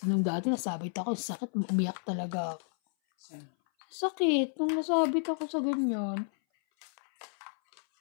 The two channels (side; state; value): right; silent; 57 dB below the other